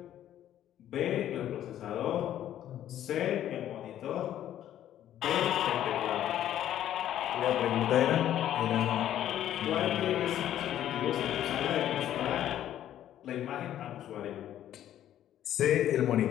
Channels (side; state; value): right; quieter; 11.6 dB